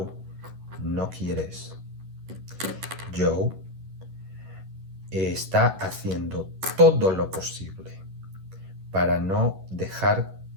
no quiere eso. Joe está haciendo todo lo posible para no dejar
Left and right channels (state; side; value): late; left; 11 ms